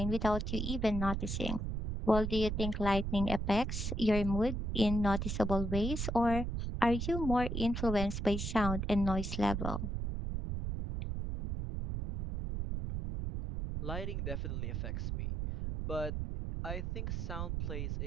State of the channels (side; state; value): right; noise; rumble, 3 dB below the sound